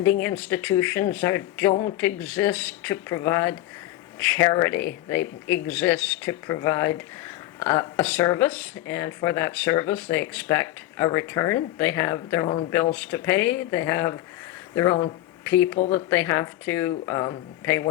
institutions don't exist to provide charity. They exist to provide a service, and for that service they expect a return. They have their own bills to pay. They have their own people that they have to pay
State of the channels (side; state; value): right; quieter; 15.1 dB